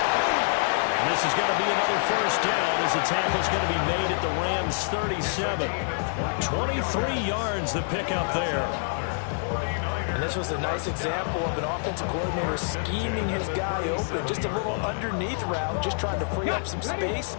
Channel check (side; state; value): right; silent; 60 dB below the other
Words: And this is going to be another 1st down as the tackle's going to be made at the Rams' 37. 23 yards the pickup there. And this was a nice example of an offensive coordinator scheming his guy open. Just a little underneath route, just trying to free up some space,